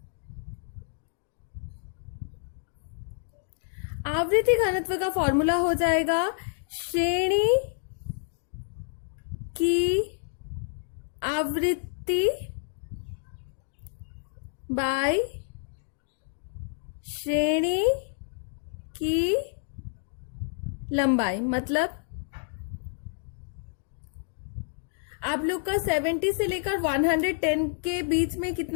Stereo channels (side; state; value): right; silent; digital silence